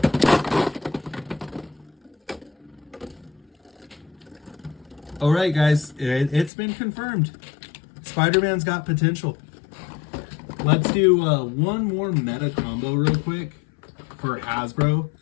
All right, guys, it's been confirmed. Spider-Man's got potential. Let's do one more meta combo real quick for Hasbro.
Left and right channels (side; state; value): right; drops out; at 6.5 s